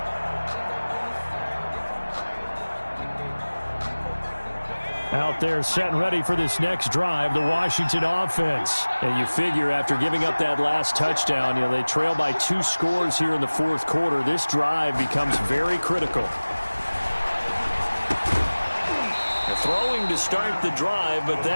Out there set and ready for this next drive, the Washington offense. And you figure after giving up that last touchdown, they trail by 2 scores here in the 4th quarter. This drive becomes very critical. Throwing to start the drive, but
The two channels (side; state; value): both; inverted; correlation -1.00